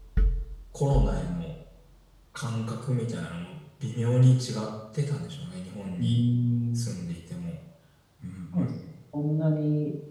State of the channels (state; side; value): identical; both; correlation 1.00